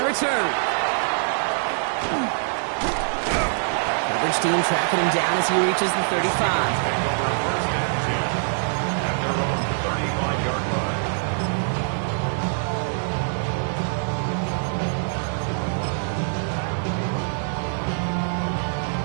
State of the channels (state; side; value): silent; left; digital silence